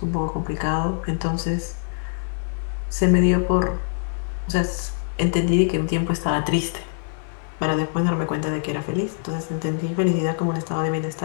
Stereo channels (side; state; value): right; silent; 63 dB below the other